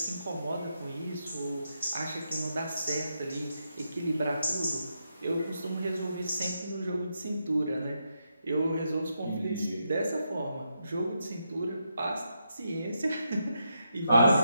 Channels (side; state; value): both; inverted; correlation -0.83